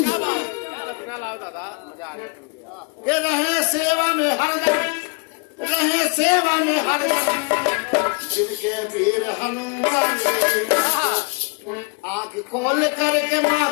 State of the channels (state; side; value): quieter; right; 32.8 dB